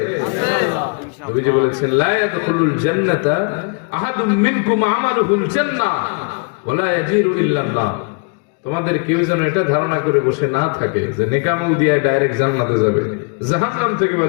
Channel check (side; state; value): right; quieter; 36.8 dB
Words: নবীজি বলেছেন লা ইয়াদখুলুল জান্নাতা আহাদুম মিনকুম আমালুহুল জান্নাহ ওয়ালা ইয়াজিরু ইল্লা নার। তোমাদের কেউ যেন এটা ধারণা করে বসে না থাকে যে নেকামল দিয়ে ডাইরেক্ট জান্নাতে যাবে, জাহান্নাম থেকে